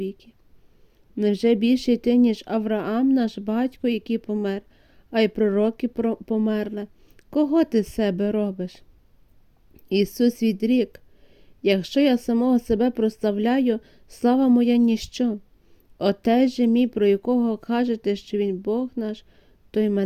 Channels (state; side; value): identical; both; correlation 1.00